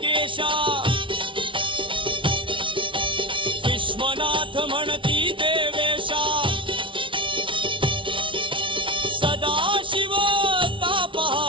विश्वनाथ म्हणती देवेशा सदा शिव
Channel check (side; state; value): left; late; 0.25 ms